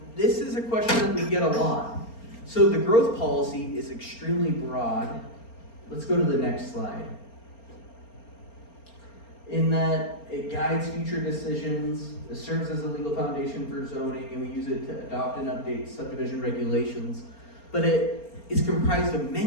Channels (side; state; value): right; late; 4.3 ms